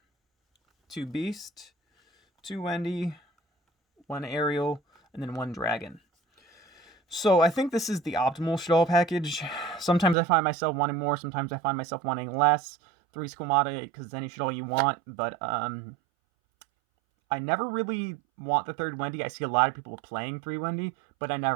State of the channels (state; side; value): drops out; left; at 10.2 s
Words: 2 Beast, 2 Wendy, 1 Aerial, and then 1 Dragon. So I think this is the optimal Shaddoll package. Sometimes I find myself wanting more, sometimes I find myself wanting less. 3 Squamata, because it's any Shaddoll you want, but I never really want the 3rd Wendy. I see a lot of people playing 3 Wendy, but I